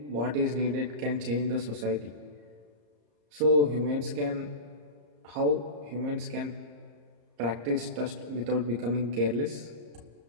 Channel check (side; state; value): left; late; 34 ms